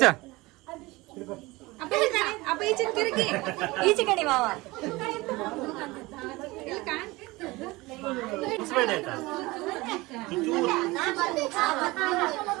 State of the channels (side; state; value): left; quieter; 21.6 dB